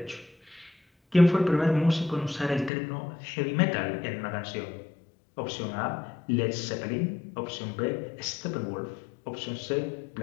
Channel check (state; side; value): drops out; right; at 2.7 s